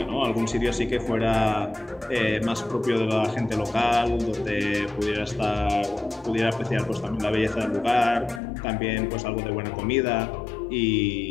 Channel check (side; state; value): right; drops out; at 8.4 s